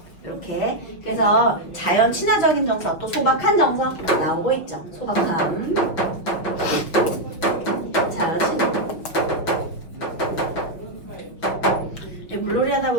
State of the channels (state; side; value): late; right; 6.1 ms